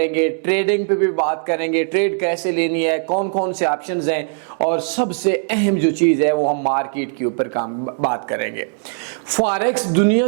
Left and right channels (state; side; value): silent; left; 57 dB below the other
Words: ट्रेडिंग पे भी बात करेंगे, ट्रेड कैसे लेनी है, कौन कौन से ऑप्शंस हैं, और सबसे अहम जो चीज़ है वो हम मार्केट के ऊपर बात करेंगे। फॉरेक्स दुनिया